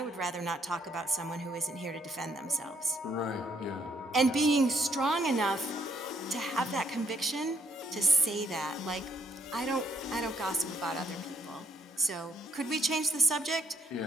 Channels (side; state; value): both; normal; correlation 0.69